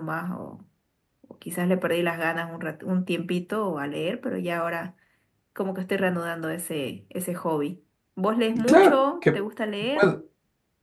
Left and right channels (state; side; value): identical; both; correlation 1.00